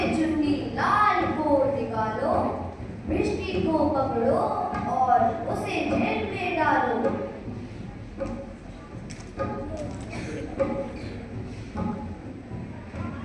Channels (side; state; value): both; identical; correlation 1.00